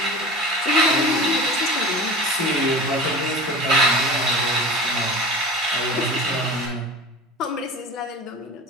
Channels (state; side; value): normal; both; correlation 0.34